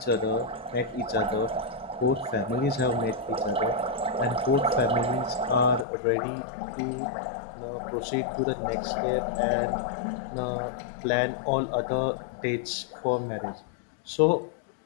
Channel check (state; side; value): drops out; right; at 5.9 s